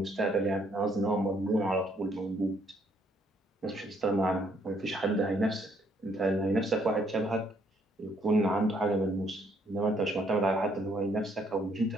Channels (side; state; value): both; normal; correlation 0.68